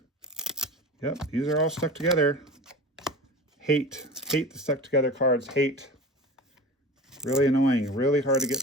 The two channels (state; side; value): normal; both; correlation 0.34